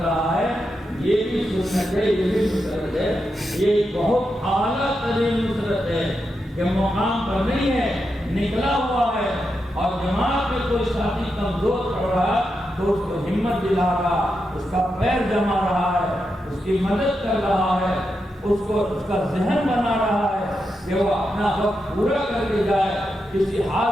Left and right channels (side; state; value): both; normal; correlation 0.86